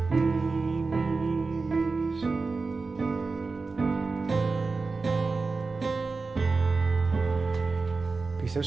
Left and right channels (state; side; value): quieter; left; 4.1 dB